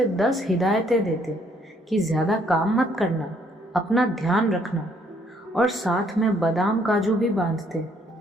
10 हिदायतें देते कि ज़्यादा काम मत करना, अपना ध्यान रखना, और साथ में बादाम काजू भी बांधते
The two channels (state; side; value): normal; both; correlation 0.67